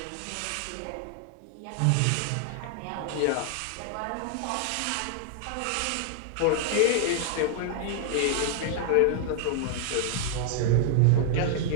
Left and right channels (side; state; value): both; different; correlation -0.01